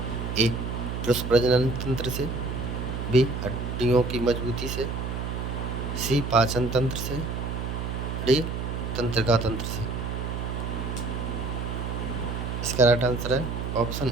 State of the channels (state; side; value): noise; right; hum, 4 dB below the sound